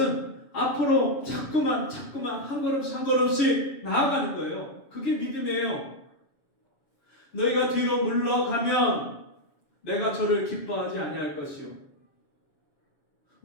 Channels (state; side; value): late; right; 7.1 ms